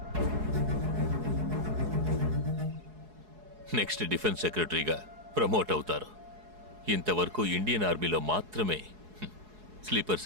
నెక్స్ట్ డిఫెన్స్ సెక్రటరీగా ప్రమోట్ అవుతారు. ఇంతవరకు ఇండియన్ ఆర్మీలో మాత్రమే స్లీపర్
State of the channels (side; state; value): left; late; 4.7 ms